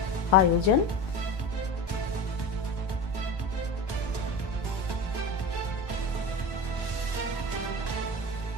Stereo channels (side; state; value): right; late; 1.1 ms